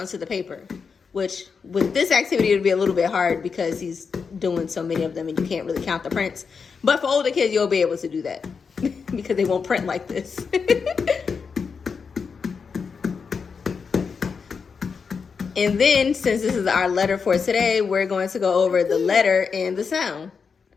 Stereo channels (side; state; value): right; quieter; 5.6 dB